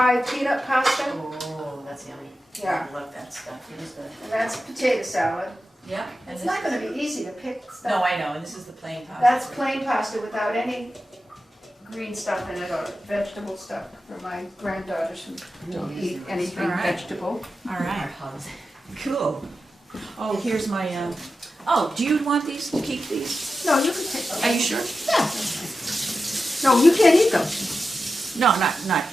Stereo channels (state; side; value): normal; both; correlation 0.91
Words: peanut pasta. Oh, that's yummy. Yeah. I love that stuff. It is good. And that's potato salad. Yeah. It's not going to be easy to pick stuff. No, I know, and this is the plain pasta. That's plain pasta without any green stuff in it or vegetable stuff for my granddaughters who don't eat anything All right. vegetable. All right. Cool. Oh, here's my, oh, do you want these, to keep these? No, you can take them. Are you sure? Yeah. No, you can't eat them. No, not